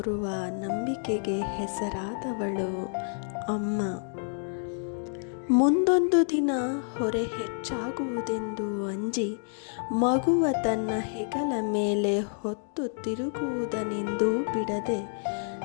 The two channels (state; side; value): silent; right; digital silence